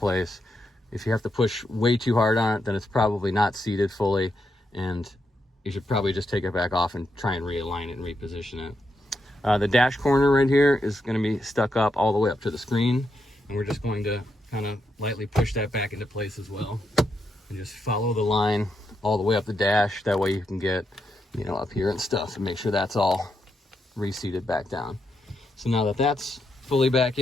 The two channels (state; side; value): normal; both; correlation 0.82